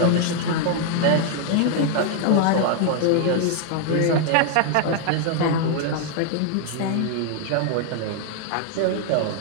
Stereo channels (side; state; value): both; different; correlation 0.00